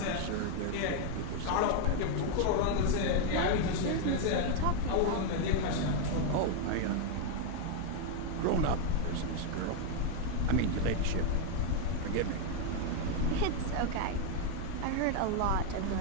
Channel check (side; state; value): both; different; correlation 0.00